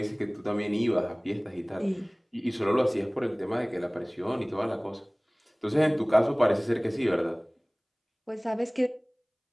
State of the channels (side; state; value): both; identical; correlation 1.00